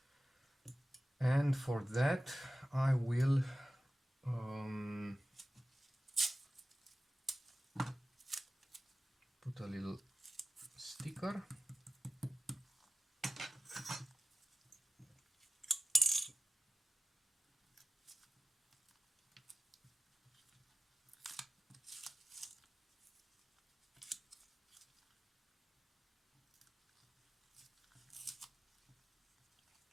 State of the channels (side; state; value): both; normal; correlation 0.93